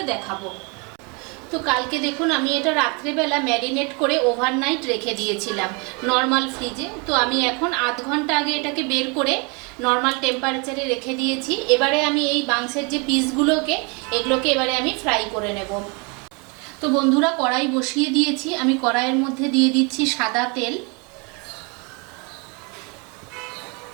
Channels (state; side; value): quieter; left; 31.8 dB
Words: দেখাবো। তো কালকে দেখুন আমি এটা রাত্রেবেলা ম্যারিনেট করে ওভারনাইট রেখে দিয়েছিলাম নর্মাল ফ্রিজে। তো আমি এখন আধ ঘন্টা আগে এটাকে বের করে নর্মাল টেম্পারেচারে রেখে দিয়েছি। এবারে আমি এই মাংসের যে পিসগুলোকে এগুলোকে এবারে আমি ফ্রাই করে নেব। তো বন্ধুরা কড়াই বসিয়ে দিয়েছি, আমি কড়াইয়ের মধ্যে দিয়ে দিচ্ছি সাদা তেল।